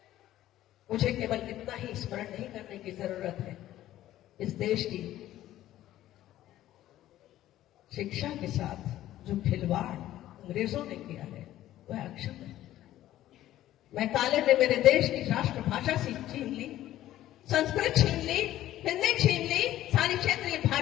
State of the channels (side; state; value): right; quieter; 13.7 dB